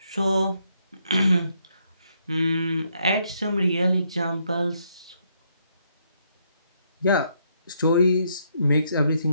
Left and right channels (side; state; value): both; inverted; correlation -0.74